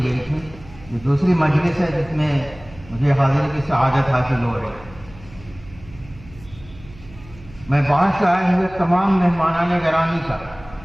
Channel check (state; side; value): noise; right; hum, 20 dB below the sound